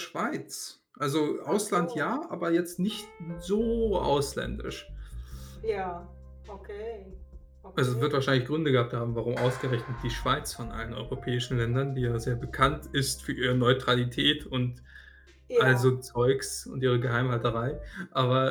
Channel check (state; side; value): identical; both; correlation 1.00